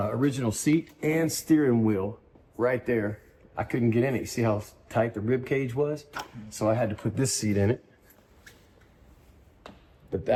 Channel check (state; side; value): identical; both; correlation 1.00